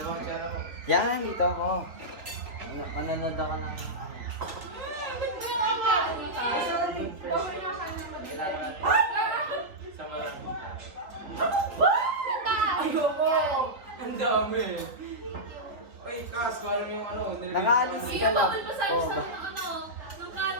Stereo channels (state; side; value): late; left; 3.9 ms